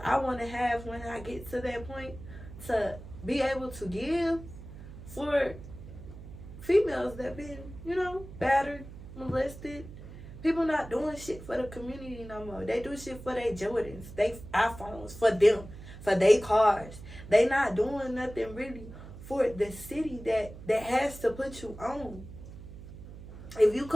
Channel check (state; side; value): noise; right; hum, 14 dB below the sound